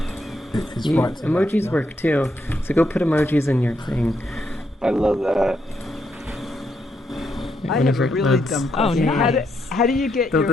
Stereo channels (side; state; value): both; normal; correlation 0.79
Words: It's right emojis work too, so go put emojis in your thing. I love that. I have a really dumb question. How do you get